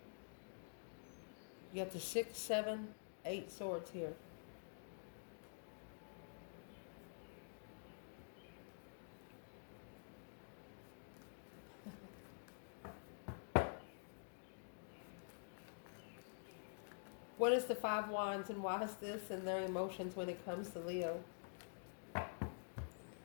You got the 6, 7, 8 swords here. What is the 5 wands and why is this and their emotions when it comes to Leo?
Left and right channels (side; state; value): right; silent; digital silence